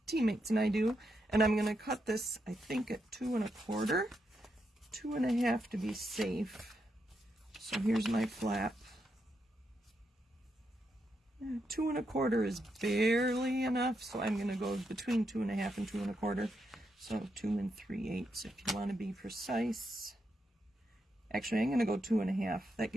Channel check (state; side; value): normal; both; correlation 0.82